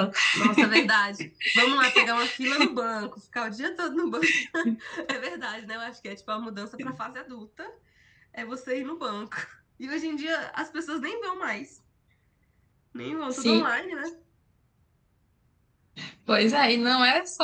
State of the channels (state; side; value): identical; both; correlation 1.00